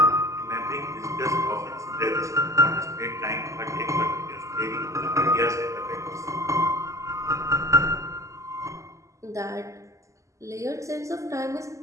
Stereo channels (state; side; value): late; left; 0.15 ms